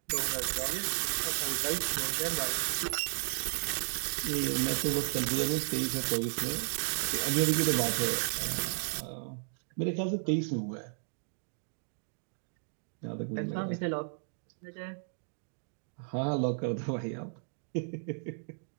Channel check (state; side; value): silent; left; digital silence